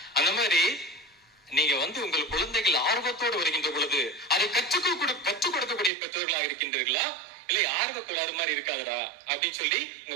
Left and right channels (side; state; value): left; drops out; at 5.9 s